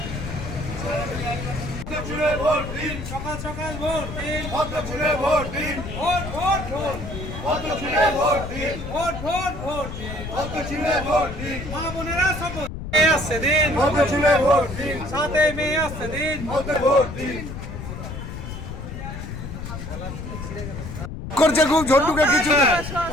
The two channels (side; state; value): left; noise; rumble, 8 dB below the sound